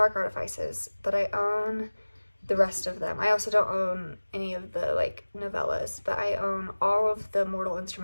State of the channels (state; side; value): inverted; both; correlation -1.00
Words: Artifices, but I own the rest of them. I also don't own any of the like novellas, but I own all of the Mortal